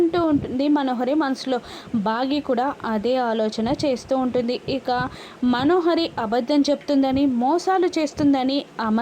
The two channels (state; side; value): identical; both; correlation 1.00